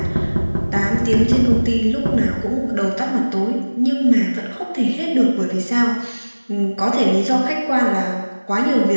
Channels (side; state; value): both; inverted; correlation -1.00